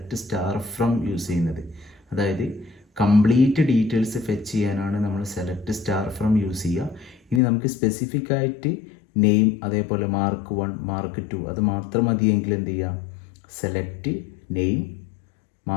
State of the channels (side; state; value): right; drops out; at 7.4 s